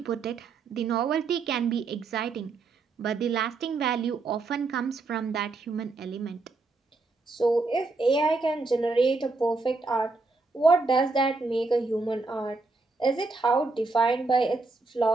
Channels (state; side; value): quieter; left; 3.7 dB